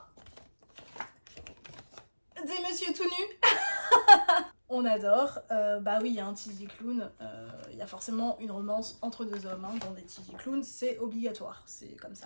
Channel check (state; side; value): inverted; both; correlation -1.00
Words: des messieurs tout nus. On adore. Bah oui, il y a un TJ Klune, il y a forcément une romance entre 2 hommes. Hein, dans des TJ Klune, c'est obligatoire, c'est comme